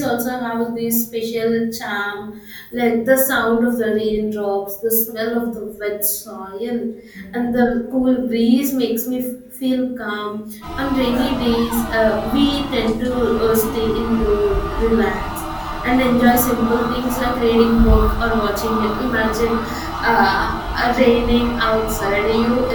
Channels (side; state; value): both; identical; correlation 1.00